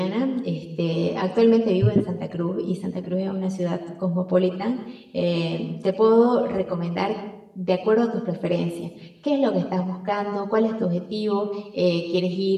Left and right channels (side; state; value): both; identical; correlation 1.00